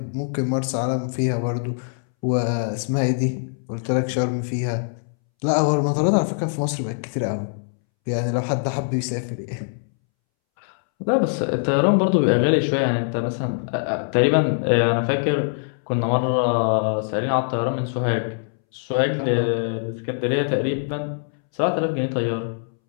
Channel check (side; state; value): right; silent; 64 dB below the other